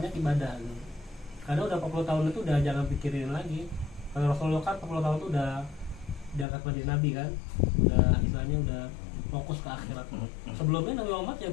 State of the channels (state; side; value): drops out; right; at 6.5 s